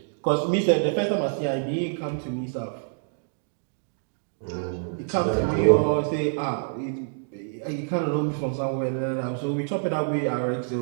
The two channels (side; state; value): left; silent; digital silence